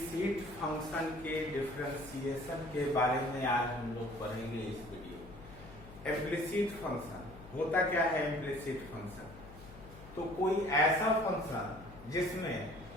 फंक्शन के डिफरेंशिएशन के बारे में आज हम लोग पढ़ेंगे इस वीडियो। इम्प्लिसिट फंक्शन होता क्या है? इम्प्लिसिट फंक्शन तो कोई ऐसा फंक्शन जिसमें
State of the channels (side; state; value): left; noise; hum, 17 dB below the sound